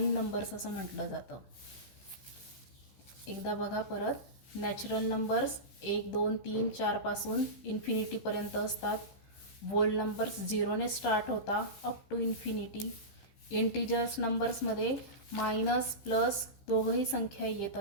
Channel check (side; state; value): right; late; 15 ms